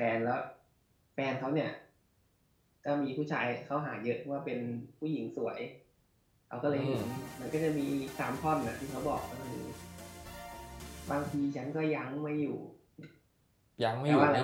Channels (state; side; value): identical; both; correlation 1.00